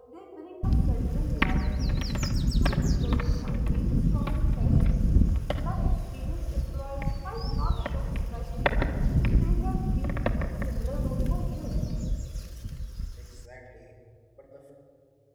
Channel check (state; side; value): identical; both; correlation 1.00